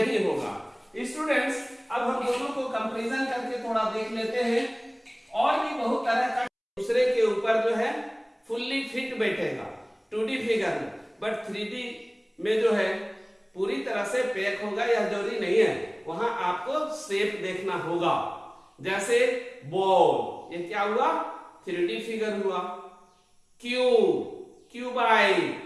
होगा। स्टूडेंट्स अब हम दोनों को कंपैरिजन करके थोड़ा देख लेते हैं। और भी बहुत तरह का दूसरे के ऊपर जो है फुल्ली फिट बैठेगा 2D फिगर में, बट 3D में जो है पूरी तरह से पैक होगा, यह जरूरी नहीं है। वहां आपको शेप देखना होगा। जैसे बॉल, ये क्या हुआ, 3D फिगर हुआ। क्यूबाइड,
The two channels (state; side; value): identical; both; correlation 1.00